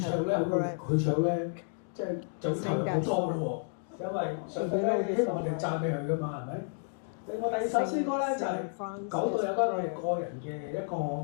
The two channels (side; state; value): right; silent; digital silence